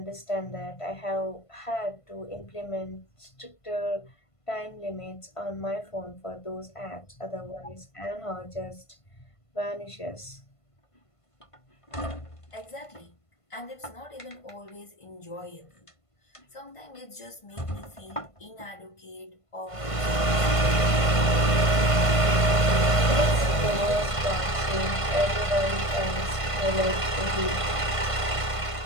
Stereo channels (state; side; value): late; right; 1.5 ms